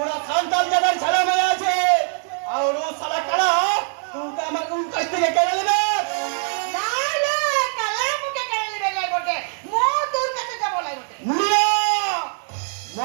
সন্তান যাদের ছেলে মেয়ে আছে, আর ও শালা কালা তোকে আমার কোন কাছ থেকে কেড়ে নেবে? না না, কালার মুখে কেড়ে নিবে নাই গোটে, মো তোর কাছে যাব নাই গোটে। মুনিয়া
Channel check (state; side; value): silent; left; 61 dB below the other